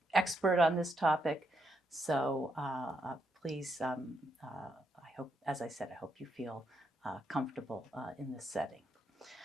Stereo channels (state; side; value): normal; both; correlation 0.79